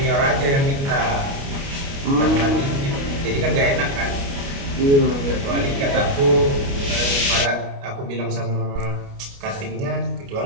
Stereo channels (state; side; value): late; left; 29 ms